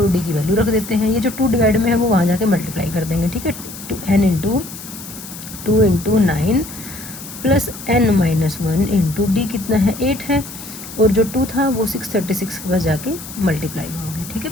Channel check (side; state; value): left; noise; hiss, 13 dB below the sound